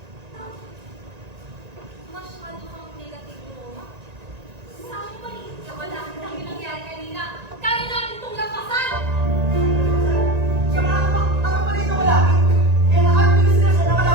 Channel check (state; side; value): late; left; 1.9 ms